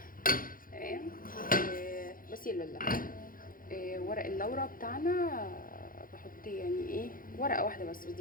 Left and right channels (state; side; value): late; right; 0.41 ms